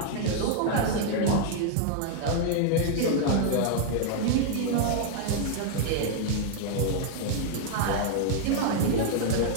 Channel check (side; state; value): both; different; correlation -0.01